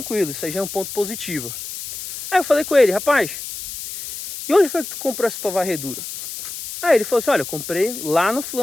isso aí já é um ponto positivo. Aí eu falei com ele: rapaz, e onde foi que tu comprou essa tua varredura? Aí ele falou assim: olha, eu comprei lá no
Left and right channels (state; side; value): noise; left; hiss, 9 dB below the sound